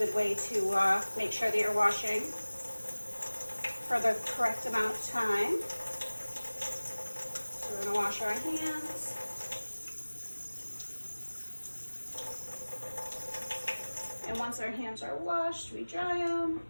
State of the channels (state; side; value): inverted; both; correlation -1.00